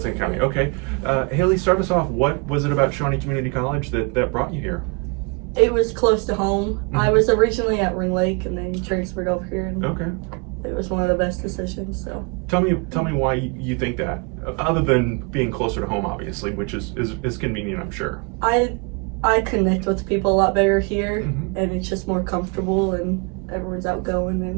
Okay. Haylie, start us off. What was it about Shawnee Community College that brought you here? It was close to home. Mm-hmm. I was originally at Ring Lake and then transferred over here. And Okay. It was one of the best decisions. So Tell me why you think that, other than being closer to home, obviously, which is convenient, I'm sure. I connect with people a lot better here, Mm-hmm. and it's just more comfortable, and everyone's outgoing.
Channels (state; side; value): quieter; left; 33.2 dB